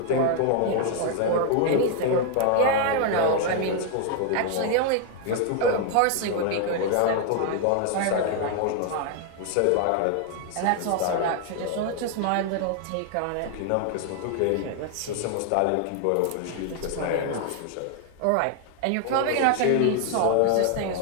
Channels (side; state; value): both; different; correlation 0.00